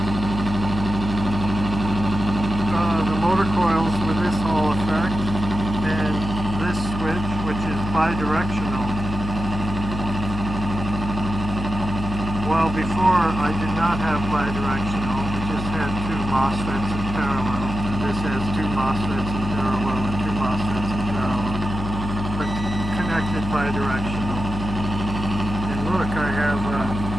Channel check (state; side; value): noise; left; hum, 5 dB below the sound